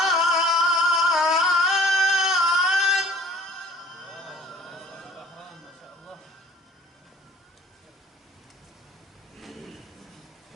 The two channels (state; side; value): normal; both; correlation 0.51